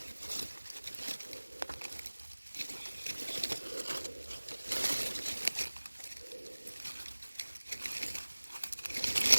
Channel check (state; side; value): inverted; both; correlation -1.00